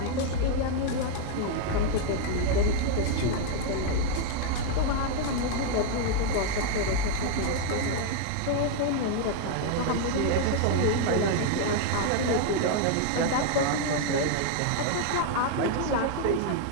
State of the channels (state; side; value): different; both; correlation 0.00